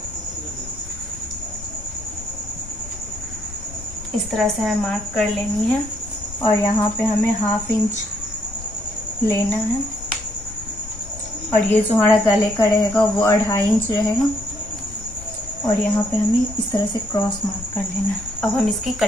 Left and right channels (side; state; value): left; noise; rumble, 15 dB below the sound